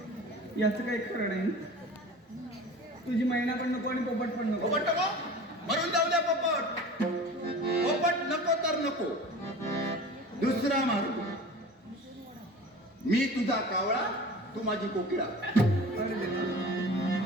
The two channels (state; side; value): normal; both; correlation 0.39